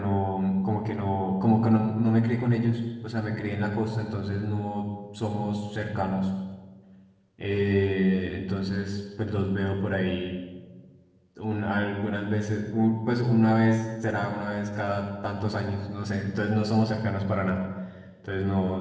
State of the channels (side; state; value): both; identical; correlation 1.00